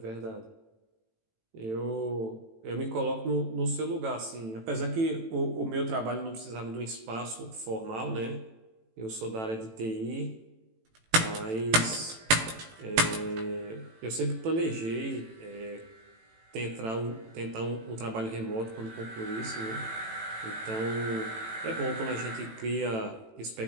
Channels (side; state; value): left; late; 18 ms